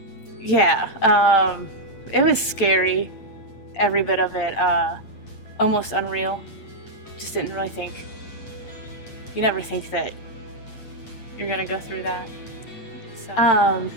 Yeah, it was scary, every bit of it, almost unreal. Just didn't really think. You never think that you're gonna go through that. So,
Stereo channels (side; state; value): right; late; 8.5 ms